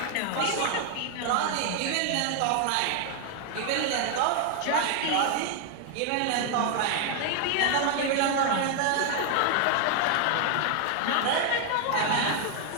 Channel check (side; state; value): both; different; correlation 0.00